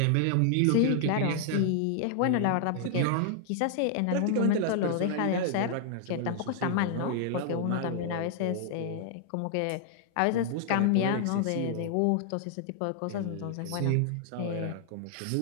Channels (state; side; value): different; both; correlation -0.01